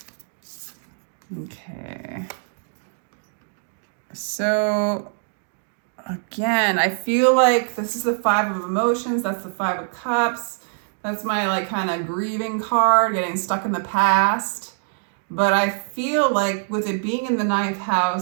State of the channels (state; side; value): silent; left; digital silence